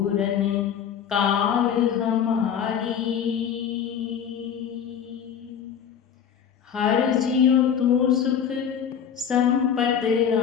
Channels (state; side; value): quieter; right; 8.1 dB